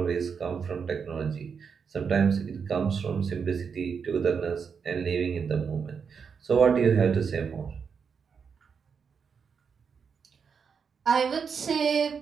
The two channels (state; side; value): quieter; left; 6.2 dB